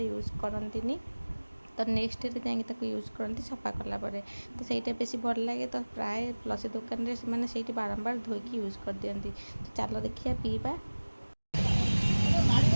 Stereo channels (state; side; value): inverted; both; correlation -1.00